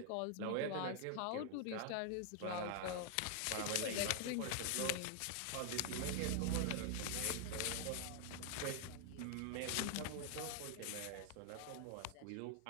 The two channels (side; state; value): both; different; correlation 0.00